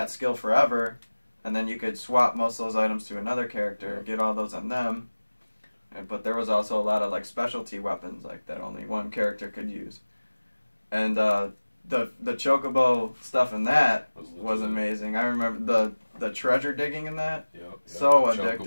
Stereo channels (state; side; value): inverted; both; correlation -1.00